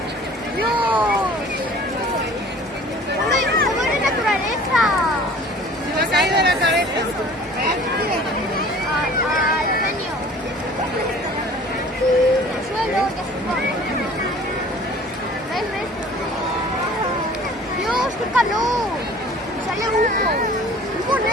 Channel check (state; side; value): normal; both; correlation 0.47